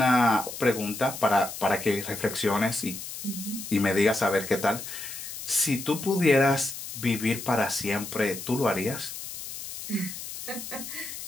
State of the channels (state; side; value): noise; left; hiss, 9 dB below the sound